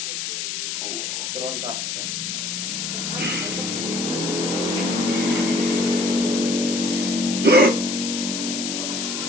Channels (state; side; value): noise; left; hiss, 3 dB below the sound